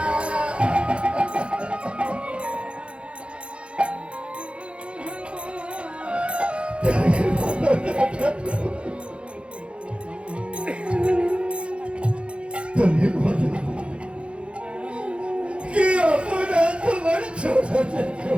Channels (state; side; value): late; left; 0.059 ms